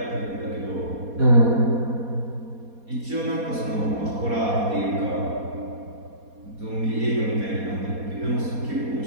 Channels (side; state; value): left; late; 4.2 ms